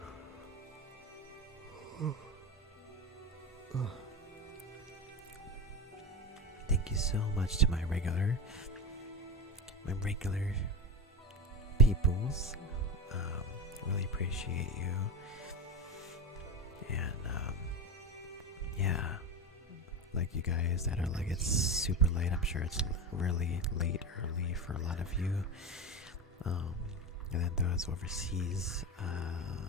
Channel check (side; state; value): both; normal; correlation 0.22